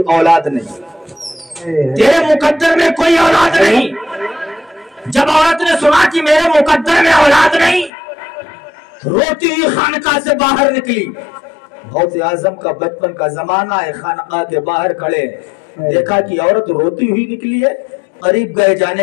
औलाद नहीं, तेरे मुकद्दर में कोई औलाद नहीं। जब औरत ने सुना कि मेरे मुकद्दर में औलाद नहीं, रोती हुई खानका से बाहर निकली। गौसे आजम का बचपन का जमाना है, खानका के बाहर खड़े, देखा कि औरत रोती हुई निकली है। करीब गए,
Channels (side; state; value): right; drops out; at 7.9 s